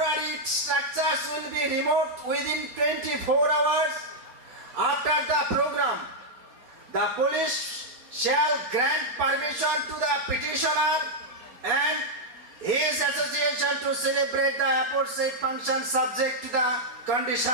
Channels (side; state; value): left; late; 4.2 ms